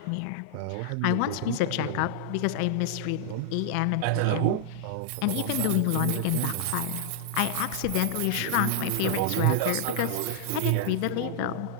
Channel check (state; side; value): different; both; correlation -0.01